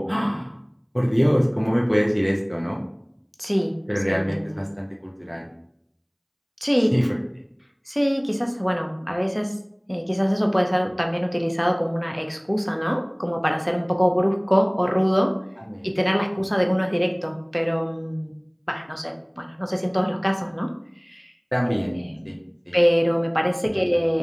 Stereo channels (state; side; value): identical; both; correlation 1.00